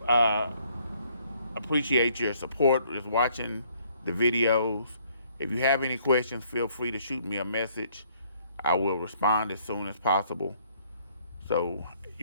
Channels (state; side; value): inverted; both; correlation -0.64